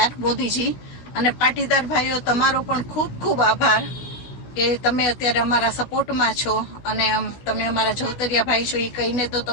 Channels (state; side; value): late; right; 16 ms